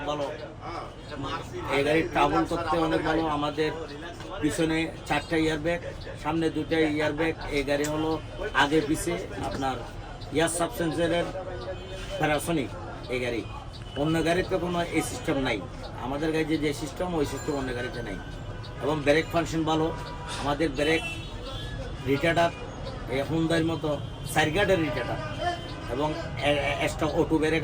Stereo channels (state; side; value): identical; both; correlation 1.00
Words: ভালো। এই গাড়ির ট্রাভেল করতে অনেক ভালো। আমাদের পিছনে 4টা ইয়ারব্যাগ, সামনে 2টা ইয়ারব্যাগ। এই গাড়ি হলো আগে পিছে আপনার ইয়ার সাবসেন্সারের প্যারাসনিক। এই গাড়ি অন্য গাড়িতে কোনো এই সিস্টেম নাই। আমাদের গাড়িতে যে সিস্টেম, ওই সিস্টেম অন্য গাড়িতে নাই। এবং ব্রেক ফাংশন ভালো। আমাদের ব্রেক রিটার্ডার এই হুন্ডার মতো সাইরগার্ডের রিটার্ডার, এবং এক্সট্রা অটো ব্রেক